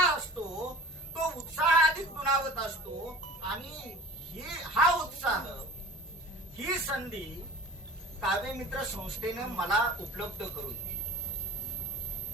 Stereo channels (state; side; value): normal; both; correlation 0.42